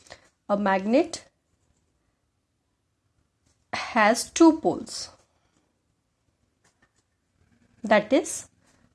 A magnet has two poles, that is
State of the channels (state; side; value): identical; both; correlation 1.00